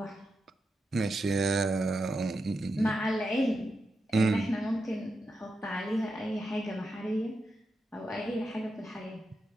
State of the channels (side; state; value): both; normal; correlation 0.87